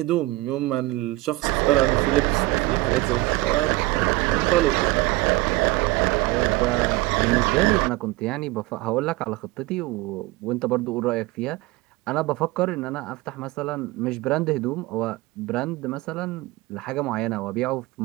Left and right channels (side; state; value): left; quieter; 20.2 dB